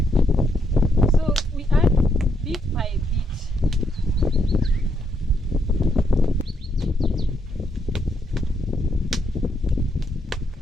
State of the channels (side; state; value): both; normal; correlation 0.76